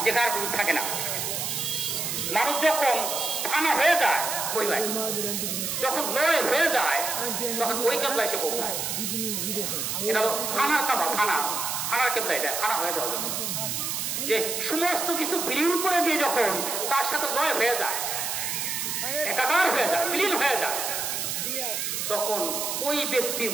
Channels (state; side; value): noise; right; hiss, 2 dB below the sound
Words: যেখানে কিছু থাকে না। মানুষ যখন ফানা হয়ে যায়, ওই ভাই যখন লয় হয়ে যায়, তখন ওই কেবলা এসে পৌঁছায়। এটা হলো ফানার কাবা, ফানার কেবলা, এটা ফানা হয়ে যাওয়া যায়। যে সমস্ত কিছু বিলীন করে দিয়ে যখন তার সাথে লয় হয়ে যায়, একাকার হয়ে যায়, বিলীন হয়ে যায়, তখন ওই ব্যক্তির